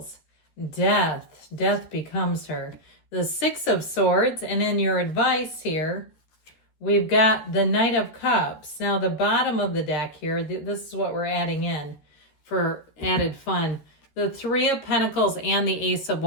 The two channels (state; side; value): late; right; 13 ms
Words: Death. Death becomes her. The Six of Swords, and in your advice here, we've got the Knight of Cups. Now, the bottom of the deck here, this is what we're adding in for added fun. The Three of Pentacles and the Ace of